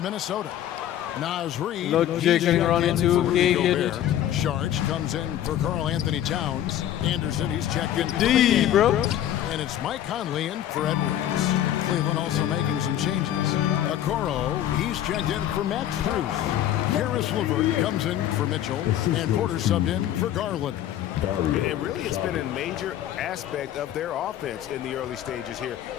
Minnesota. Nas Reed. Lodjig kaning Ronnie 2K. Sharge comes in for Karl Anthony Towns. Anderson, he's checked in. D, bro. And it's Mike Conley in for Edwards. Cleveland also making some changes. Okoro, he's checked in for Max Strus. Karis LeVert comes in for Mitchell. And Porter subbed in for Garland. It really has been a major aspect of their offense in the early stages here.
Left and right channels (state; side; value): quieter; right; 11.7 dB